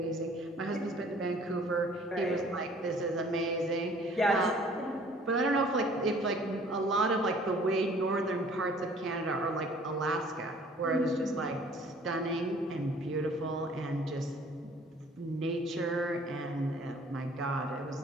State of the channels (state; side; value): normal; both; correlation 0.54